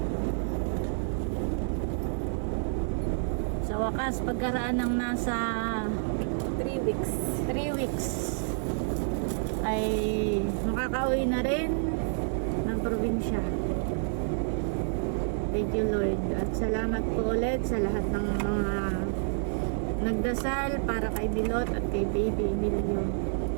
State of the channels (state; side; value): silent; left; 59 dB below the other